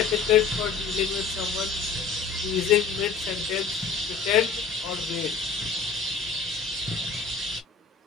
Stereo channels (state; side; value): quieter; right; 5.2 dB